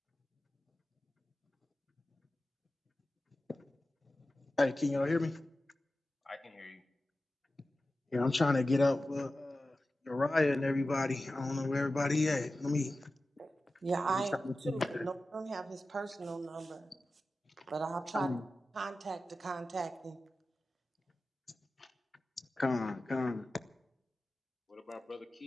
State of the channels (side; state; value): both; normal; correlation 0.94